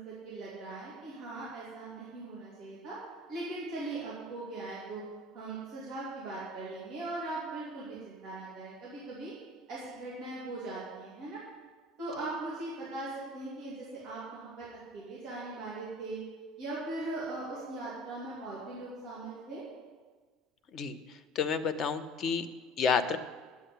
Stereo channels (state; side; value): normal; both; correlation 0.44